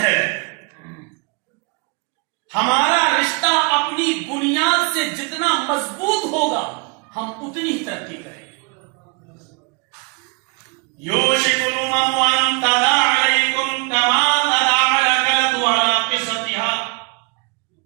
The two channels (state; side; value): quieter; left; 32.3 dB